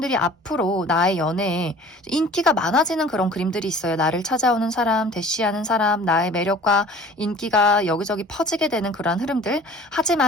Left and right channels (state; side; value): normal; both; correlation 0.47